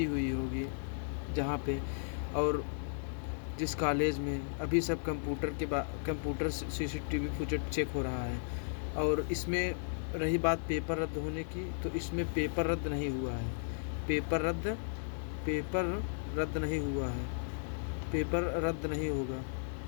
होगी, जहाँ पे, और जिस कॉलेज में अभी सब कंप्यूटर सीसीटीवी फुटेज चेक हो रहा है। और इसमें रही बात पेपर रद्द होने की, तो इसमें पेपर रद्द नहीं हुआ है। पेपर रद्द नहीं हुआ है। पेपर रद्द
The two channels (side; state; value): right; silent; 54 dB below the other